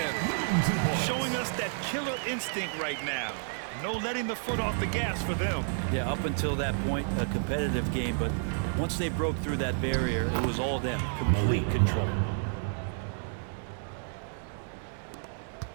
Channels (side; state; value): left; silent; digital silence